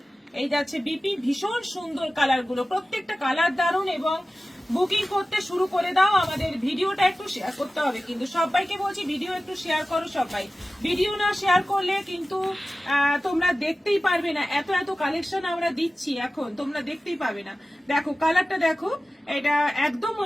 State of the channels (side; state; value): both; normal; correlation 0.96